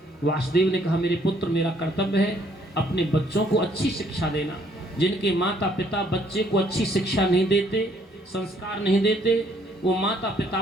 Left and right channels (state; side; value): normal; both; correlation 0.65